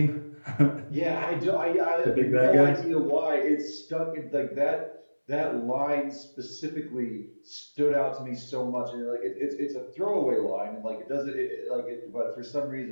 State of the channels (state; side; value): inverted; both; correlation -1.00